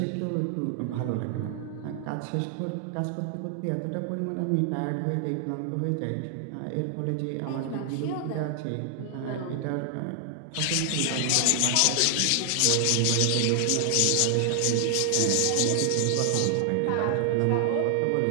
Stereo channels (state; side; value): different; both; correlation 0.00